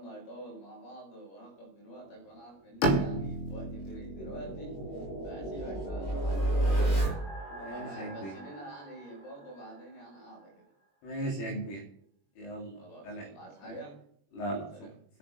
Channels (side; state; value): right; late; 21 ms